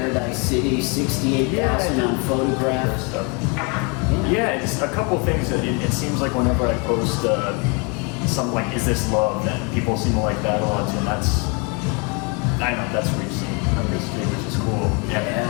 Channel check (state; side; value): quieter; right; 31.7 dB